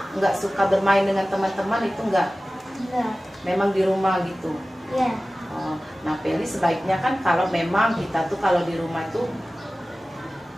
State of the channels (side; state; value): both; normal; correlation 0.96